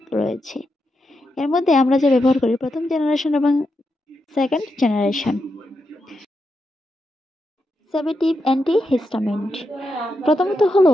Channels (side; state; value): both; normal; correlation 0.85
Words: রয়েছে। এর মধ্যে আমরা যা ব্যবহার করি প্রথম জেনারেশন এবং সেকেন্ড জেনারেশন। সেডেটিভ অ্যান্টিহিস্টামিন্ট। প্রথমত হলো